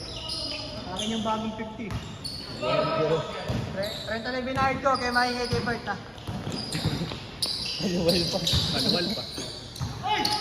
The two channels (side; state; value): both; identical; correlation 1.00